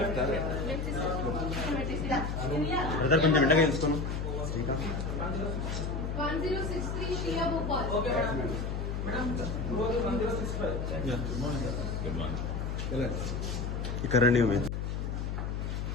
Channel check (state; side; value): noise; left; hum, 2 dB below the sound